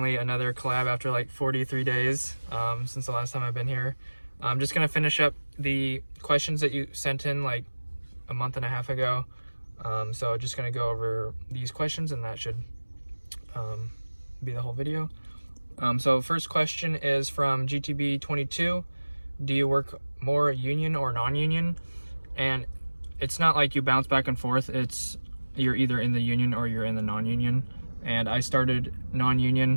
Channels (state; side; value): inverted; both; correlation -1.00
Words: another collab after like 43 days since the last time I've been here. I'm just gonna finish up the questions that you sent in like a month and a half ago. So just gonna go over these questions, and that should be the whole video. So first question is from GTB22. Do you work more union or non-union? And it's not like you bounce back and forth. It's you're either in the union or you're in the non-union. And I started